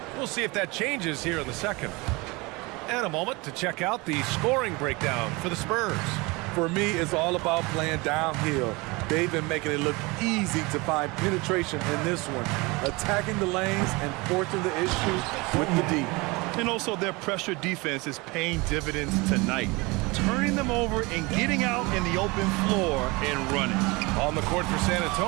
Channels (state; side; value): quieter; left; 24.9 dB